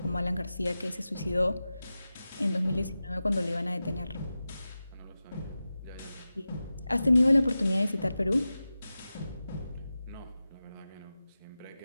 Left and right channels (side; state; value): both; inverted; correlation -0.94